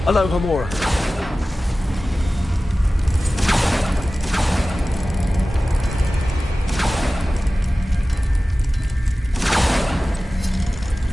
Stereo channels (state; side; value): normal; both; correlation 0.96